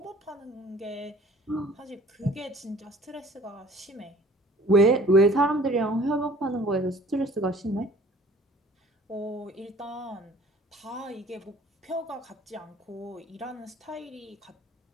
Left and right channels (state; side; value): normal; both; correlation 0.51